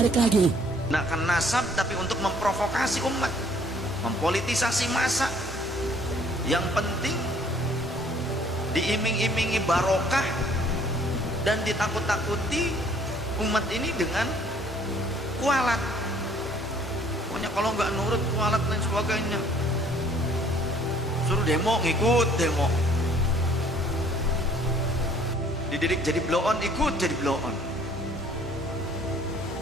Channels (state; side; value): normal; both; correlation 0.59